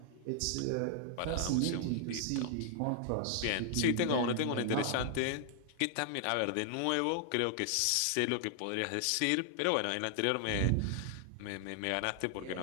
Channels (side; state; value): both; different; correlation 0.00